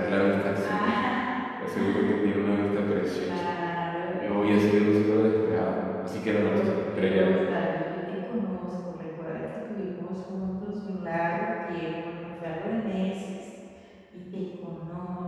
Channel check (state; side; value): identical; both; correlation 1.00